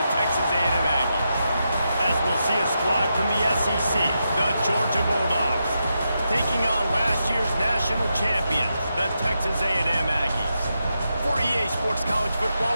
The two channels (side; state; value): both; inverted; correlation -0.85